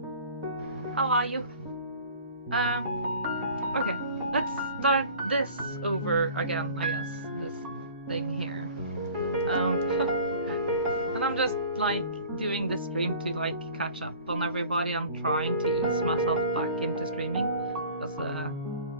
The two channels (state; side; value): inverted; both; correlation -0.45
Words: How are you? Okay, let's start this over again, I guess. This thing here. And I'm just like doing this stream to like catch up on everybody. I'm trying to ease myself back into streaming because